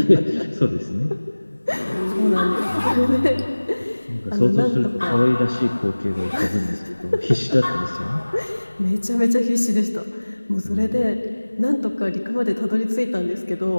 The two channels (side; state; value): both; inverted; correlation -1.00